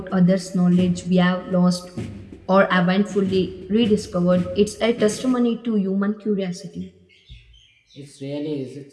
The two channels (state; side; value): identical; both; correlation 1.00